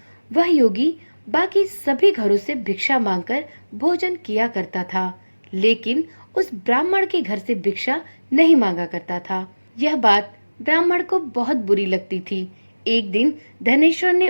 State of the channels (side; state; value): both; inverted; correlation -1.00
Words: वह योगी बाकी सभी घरों से भिक्षा मांगकर भोजन किया करता था, लेकिन उस ब्राह्मण के घर से भिक्षा नहीं मांगा करता था। यह बात ब्राह्मण को बहुत बुरी लगती थी। एक दिन धनेश्वर ने